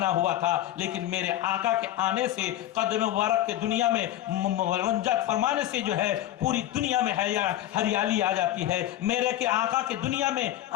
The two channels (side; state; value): right; quieter; 13.4 dB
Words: हुआ था, लेकिन मेरे आका के आने से कदम मुबारक के दुनिया में रंजत फरमाने से जो है पूरी दुनिया में हरियाली आ जाती है। मेरे के आका के दुनिया में